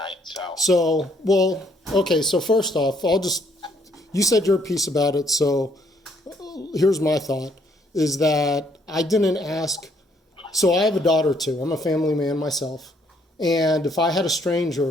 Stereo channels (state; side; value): normal; both; correlation 0.68